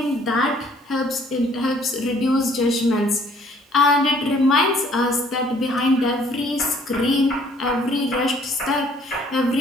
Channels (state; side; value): normal; both; correlation 0.60